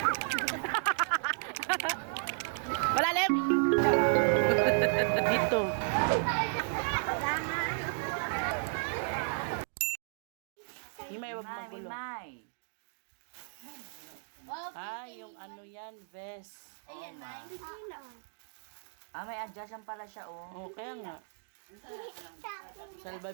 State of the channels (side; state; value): left; silent; digital silence